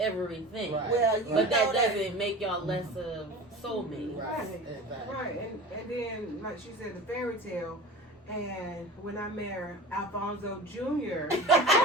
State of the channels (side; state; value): both; normal; correlation 0.34